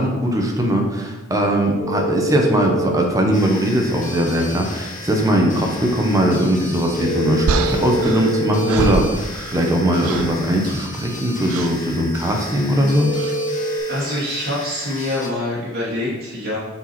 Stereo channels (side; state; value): both; normal; correlation 0.58